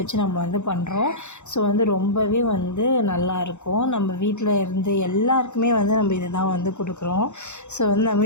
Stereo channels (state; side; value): late; right; 0.83 ms